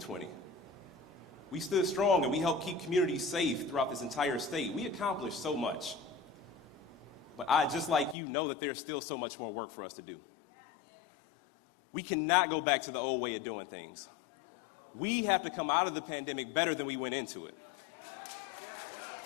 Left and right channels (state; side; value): drops out; right; at 8.2 s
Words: We stood strong and we helped keep communities safe throughout this entire state. We accomplished so much. But I, just like you, know that there's still so much more work for us to do. We cannot go back to the old way of doing things. We have to come out of the pandemic better than we went into it.